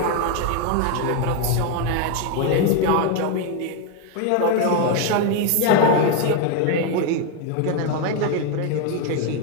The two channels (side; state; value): both; different; correlation 0.01